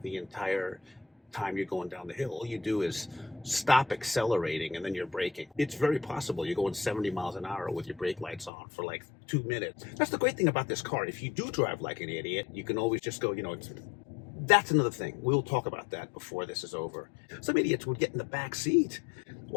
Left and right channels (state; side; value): drops out; right; at 8.5 s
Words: the entire time you're going down the hill. All you do is stop accelerating and then you're braking. It's very possible you're going 70 miles an hour with your brake lights on for like 2 minutes. That's the great thing about this car. If you do drive like an idiot, you can always just go, that's another thing. We'll talk about that before this is over. Some idiots would get in the back seat